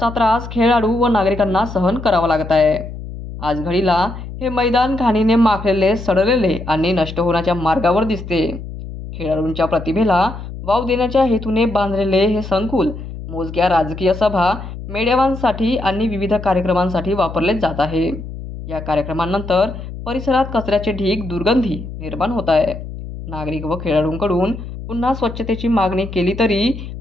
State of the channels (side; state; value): left; noise; hum, 10 dB below the sound